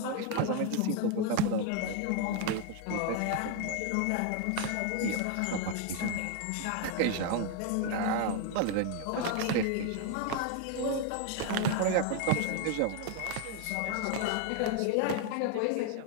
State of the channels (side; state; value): both; different; correlation 0.01